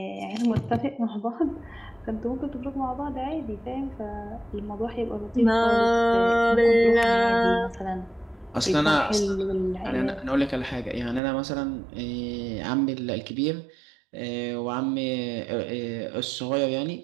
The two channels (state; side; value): drops out; left; at 11.2 s